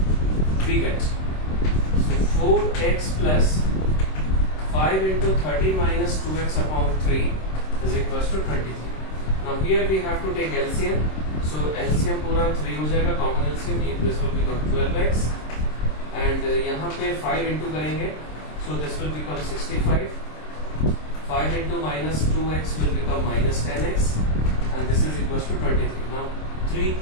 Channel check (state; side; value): late; right; 26 ms